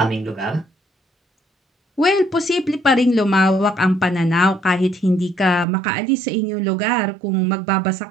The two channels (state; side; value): drops out; left; at 5.7 s